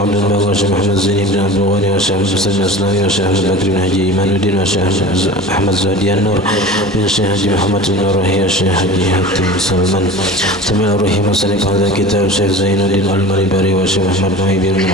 عبد الباقي وشيخ محمد زيني بن عبد الغني وشيخ مسلم الإسلامي وشيخ أحمد بكر بن حجي إيمان الدين وشيخ أحمد زهدي النور بن الشيخ حجي محمد النورهي وشيخ حجي حاتم سلمان ثم روحي مصنف هذا الكتاب شيخ زين الدين المريبري وشيخ محمد نوي بن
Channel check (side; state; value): both; normal; correlation 0.36